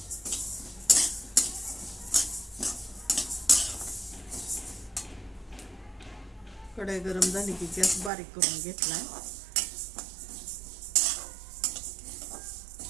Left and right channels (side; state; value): left; drops out; at 8.1 s